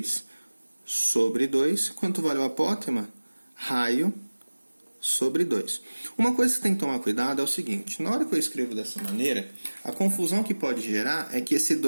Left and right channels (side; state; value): both; inverted; correlation -1.00